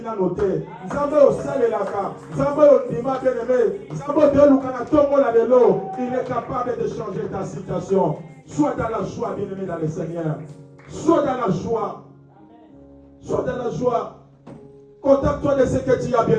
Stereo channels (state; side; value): identical; both; correlation 1.00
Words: a noté. Zambe au sale laka, Zambe au nima, bien-aimé, Zambe de l'oukana tomo la de l'eau. Il est capable de changer ta situation. Sois dans la joie, bien-aimé, dans le Seigneur. Sois dans la joie. Sois dans la joie. Contacte-toi de ce que tu as,